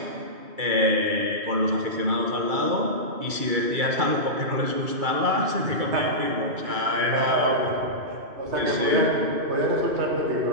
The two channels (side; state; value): left; late; 2.3 ms